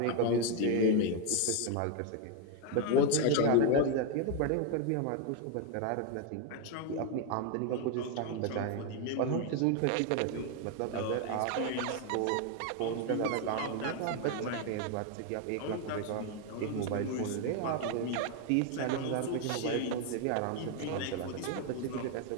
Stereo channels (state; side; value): different; both; correlation 0.01